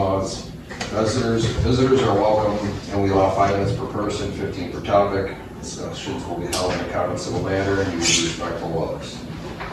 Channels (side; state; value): both; identical; correlation 1.00